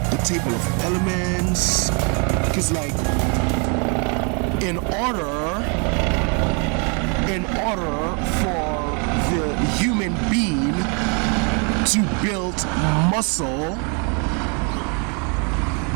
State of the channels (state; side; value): quieter; left; 35.6 dB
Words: the table of elements, because like in order for the human being to build muscle,